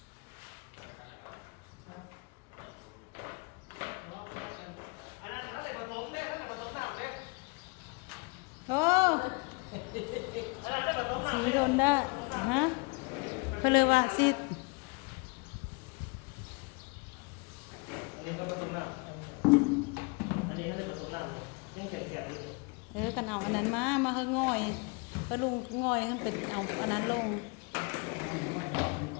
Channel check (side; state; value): right; quieter; 30.2 dB